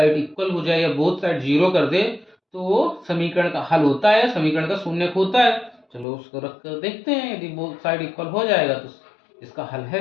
इक्वल हो जाए या बोथ साइड 0 कर दे तो वो समीकरण का हल होता है, समीकरण का शून्यक होता है। चलो उसको रख कर देखते हैं, यदि बोथ साइड इक्वल हो जाएगा तो इसका हल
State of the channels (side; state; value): right; drops out; at 6.1 s